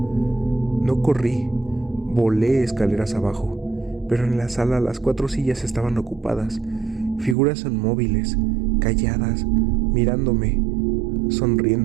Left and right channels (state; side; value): drops out; left; at 7.4 s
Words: No corrí, volé escaleras abajo, pero en la sala las 4 sillas estaban ocupadas. Figuras inmóviles, calladas, mirándome,